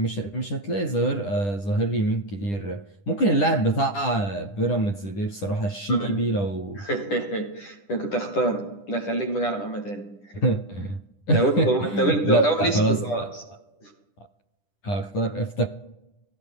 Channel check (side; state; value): right; late; 10 ms